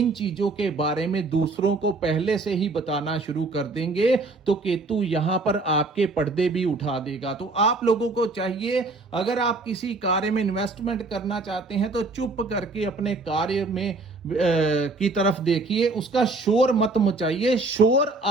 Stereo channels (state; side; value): quieter; left; 3.4 dB